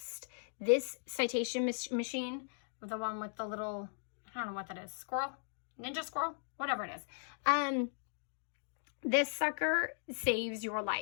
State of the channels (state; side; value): silent; right; digital silence